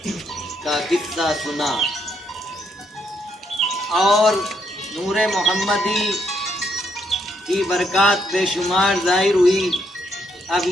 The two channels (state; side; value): normal; both; correlation 0.75